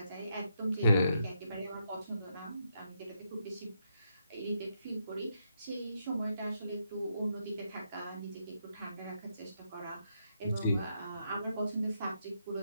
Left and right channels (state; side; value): inverted; both; correlation -0.79